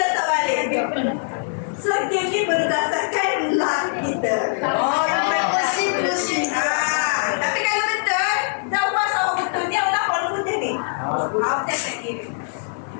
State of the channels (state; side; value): silent; right; digital silence